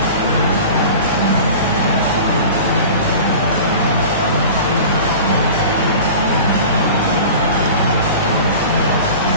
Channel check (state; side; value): inverted; both; correlation -0.38